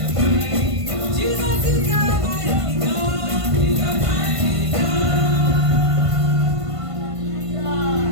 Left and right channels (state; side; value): late; left; 1.5 ms